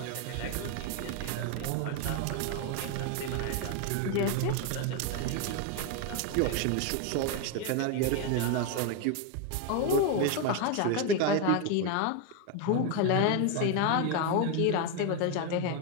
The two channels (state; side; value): different; both; correlation 0.01